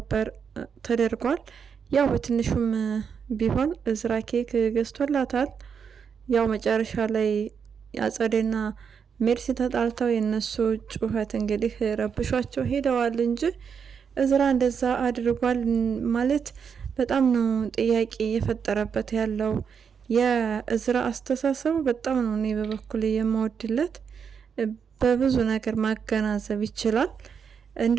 ተደርጓል። ያው በትንሹም ቢሆን እዝራ ኬክ ገዝቶላታል። ያው መጨረሻ ላይ አጸዴና ሜርሲ ተጣልተው የነሱ ጩኸት እንግዲህ ረብሿቸው ሄደዋል እንጂ እዝራ እንደዛ አድርጓል ማለት በጣም ነው ጥያቄ የፈጠረበት ያለው። የእዝራ አስተሳሰቡ በጣም ነው እኔ በበኩል የማወድለት። በብዙ ነገር ማገናዘብ ይችላል።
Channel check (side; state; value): left; quieter; 6.8 dB